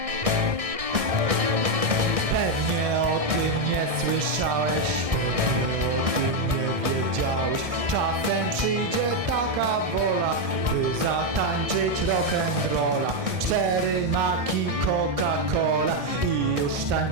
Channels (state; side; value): late; left; 1.6 ms